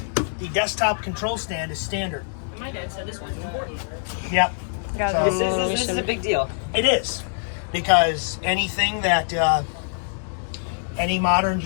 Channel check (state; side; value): silent; right; digital silence